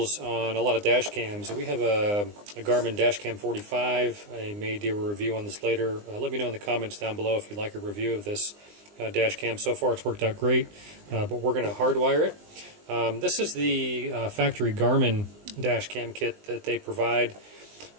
on a lot of dash cams. We have a Garmin Dash Cam 45. I may do a review on this later. Let me know in the comments down below if you'd like a review of this dash cam. So far it's worked out great, but we're going to hardwire it. This is the factory Garmin dash cam kit that they provide,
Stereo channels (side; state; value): left; late; 20 ms